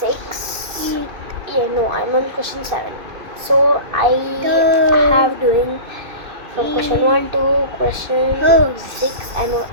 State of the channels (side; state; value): left; late; 2.6 ms